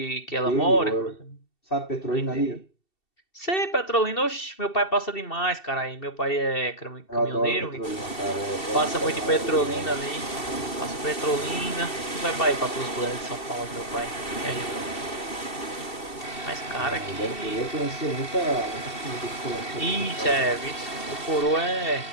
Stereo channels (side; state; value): right; late; 2.7 ms